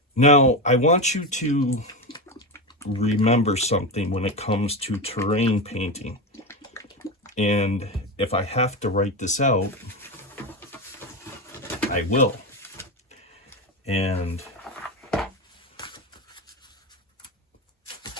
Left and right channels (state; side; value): normal; both; correlation 0.16